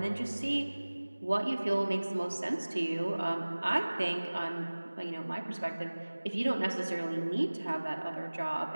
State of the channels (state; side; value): inverted; both; correlation -1.00